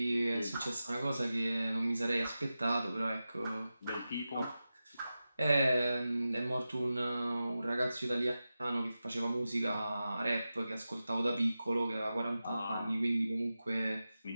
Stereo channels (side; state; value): both; inverted; correlation -0.93